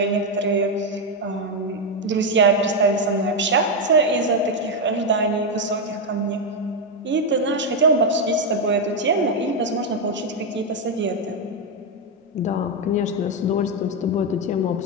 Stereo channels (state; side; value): normal; both; correlation 0.04